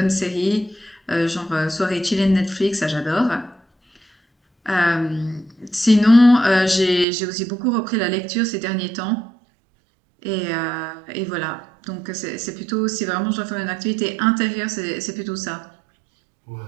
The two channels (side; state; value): left; drops out; at 7.1 s